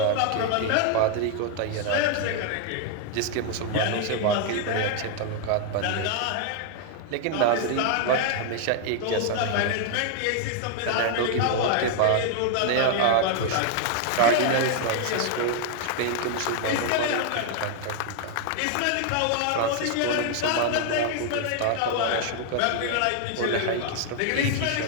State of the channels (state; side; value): different; both; correlation 0.00